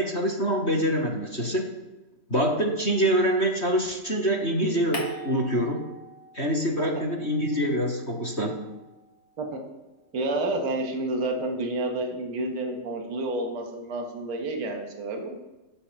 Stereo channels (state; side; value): late; right; 3.1 ms